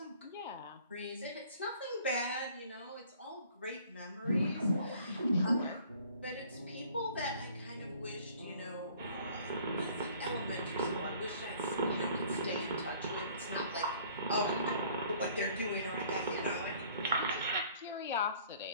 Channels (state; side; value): inverted; both; correlation -0.54